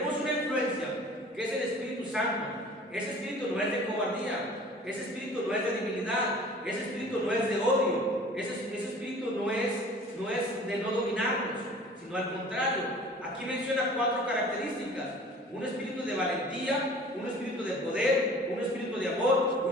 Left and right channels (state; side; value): normal; both; correlation 0.46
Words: una influencia que es el Espíritu Santo. Ese espíritu no es de cobardía, ese espíritu no es de debilidad, ese espíritu no es de odio, ese espíritu no es de no dominarnos, sino al contrario. Aquí menciona 4 características: un espíritu de valentía, un espíritu de poder, un espíritu de amor,